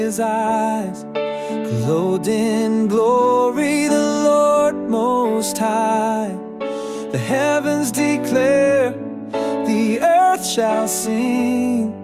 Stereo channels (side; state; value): both; identical; correlation 1.00